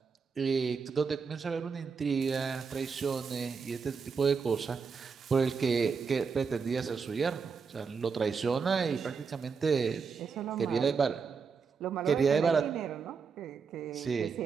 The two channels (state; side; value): quieter; left; 5.6 dB